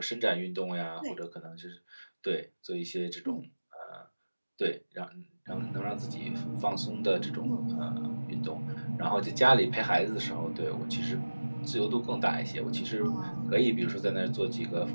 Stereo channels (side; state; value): both; inverted; correlation -1.00